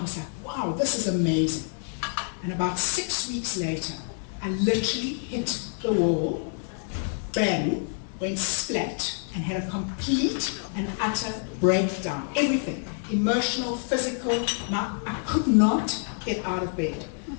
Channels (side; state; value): right; silent; 60 dB below the other